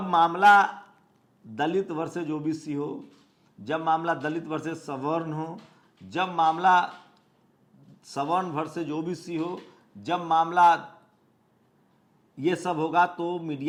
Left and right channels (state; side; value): identical; both; correlation 1.00